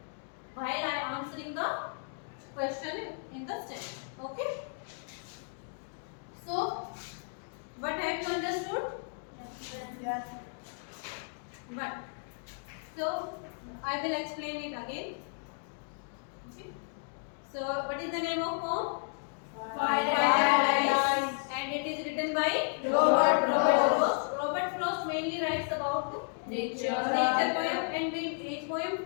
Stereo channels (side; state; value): right; silent; 56 dB below the other